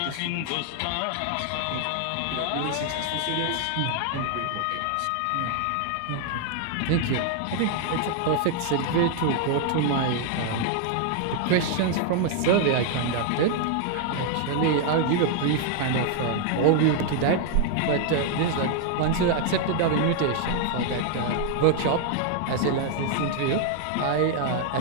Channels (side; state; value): both; different; correlation 0.00